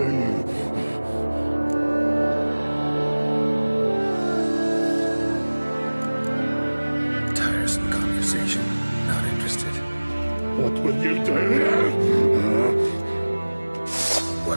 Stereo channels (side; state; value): both; inverted; correlation -1.00